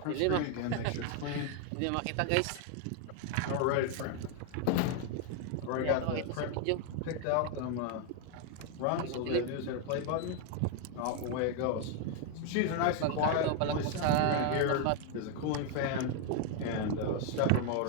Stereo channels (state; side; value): different; both; correlation 0.01